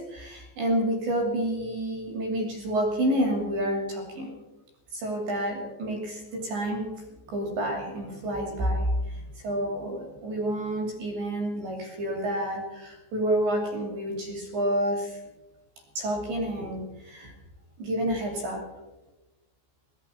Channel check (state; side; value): late; left; 14 ms